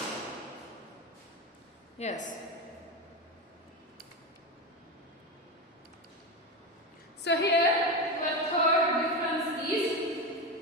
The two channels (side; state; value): both; normal; correlation 0.17